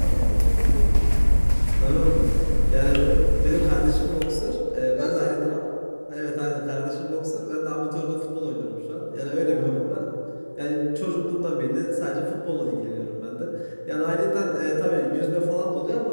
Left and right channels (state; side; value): inverted; both; correlation -1.00